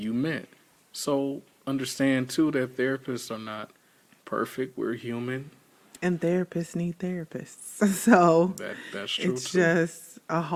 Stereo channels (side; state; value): both; identical; correlation 1.00